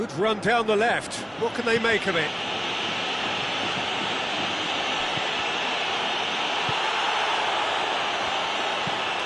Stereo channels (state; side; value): identical; both; correlation 1.00